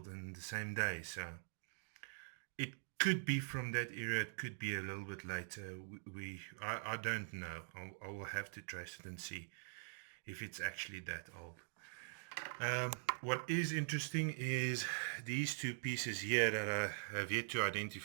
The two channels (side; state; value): left; silent; digital silence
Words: in the same day. So it could be from that era, it could be a little bit later. I don't know. I will have to trace it and see if it's actually that old. What is interesting is these two pieces here that I have yet to